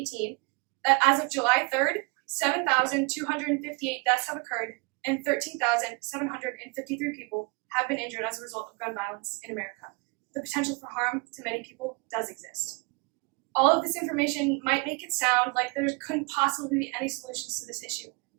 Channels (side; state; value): left; quieter; 29.4 dB